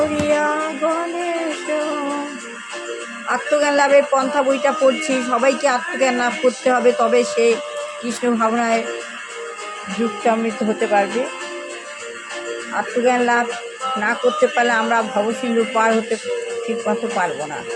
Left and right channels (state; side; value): identical; both; correlation 1.00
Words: গণেশ। আত্মজ্ঞান লাভের পন্থা বইটা পড়ছি। সবাইকে আত্মজ্ঞান লাভ করতে হবে, তবে সে কৃষ্ণ ভাবনায় যুক্তামৃত হতে পারবে। আত্মজ্ঞান লাভ না করতে পারলে আমরা ভবসিন্ধু পার হতে ঠিক মতো পারবো না।